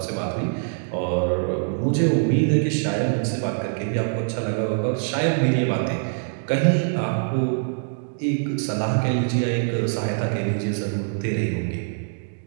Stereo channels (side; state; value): left; silent; digital silence